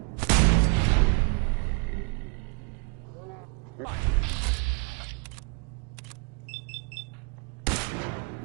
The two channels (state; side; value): quieter; left; 33.8 dB